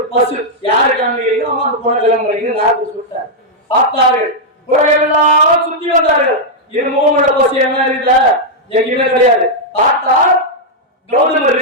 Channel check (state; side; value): normal; both; correlation -0.04